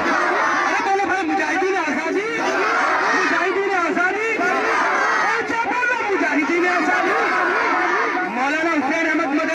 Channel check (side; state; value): both; identical; correlation 1.00